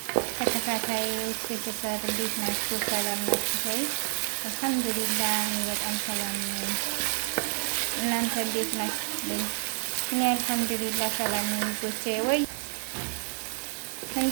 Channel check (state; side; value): silent; left; digital silence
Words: ተከታታዮች ቤተሰብ እንዴት ናችሁ? ሰላም ናችሁ ወይ? አልሐምዱሊላህ እኔ በጣም ሰላም ነኝ። እናንተ እንዴት ናችሁልኝ? እኔ አልሐምዱሊላህ ሰላም ነኝ ውዶቼ። ወይ